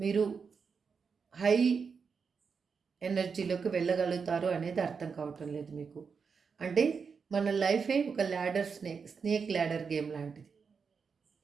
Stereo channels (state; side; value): quieter; left; 5.7 dB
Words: హై ఎనర్జీలోకి వెళ్ళగలుగుతారు అనేది అర్థం కావటం లేదు మీకు. అంటే మన లైఫే ఒక ల్యాడర్ స్నేక్ ల్యాడర్ గేమ్ లాంటిది.